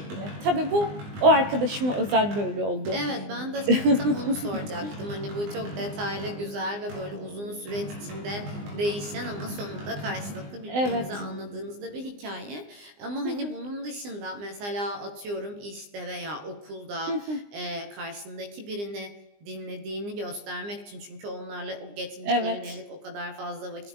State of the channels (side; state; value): left; late; 20 ms